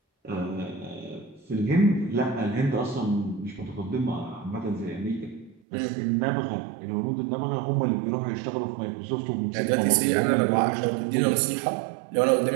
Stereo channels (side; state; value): left; drops out; at 5.6 s